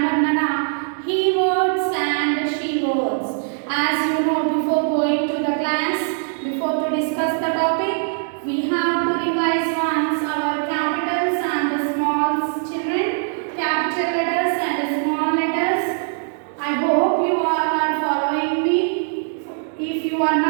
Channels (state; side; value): silent; left; digital silence